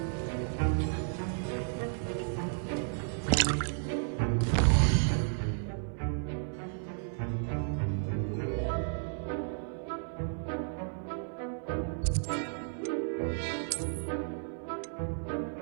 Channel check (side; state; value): left; silent; 56 dB below the other